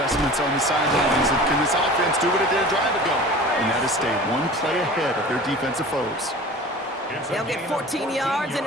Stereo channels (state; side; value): normal; both; correlation 0.40